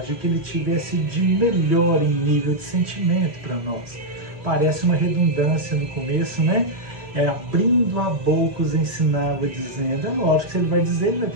o que ele tivesse de melhor em nível de sentimento para nós. Parece uma redundância no começo, né? Abrindo a boca os ensinava, dizendo. É lógico que se ele vai dizer, ele vai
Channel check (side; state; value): left; late; 2.4 ms